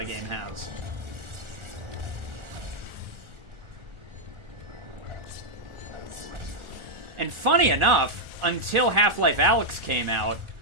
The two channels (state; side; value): late; left; 1.4 ms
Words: game has. And funny enough, until Half-Life Alyx came out,